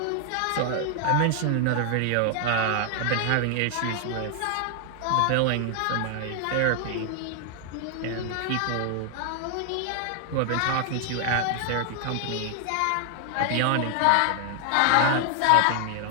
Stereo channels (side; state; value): both; different; correlation 0.00